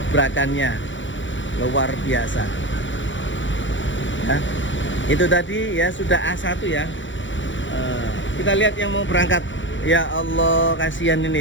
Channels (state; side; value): late; right; 0.55 ms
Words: luar biasa ya. Itu tadi ya sudah A1 ya. Kita lihat yang mau berangkat. Ya Allah, kasihan